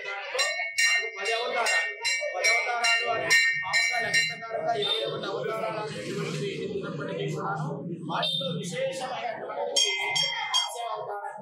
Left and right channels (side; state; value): both; identical; correlation 1.00